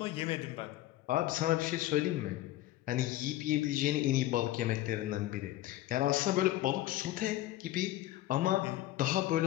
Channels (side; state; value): right; quieter; 15.1 dB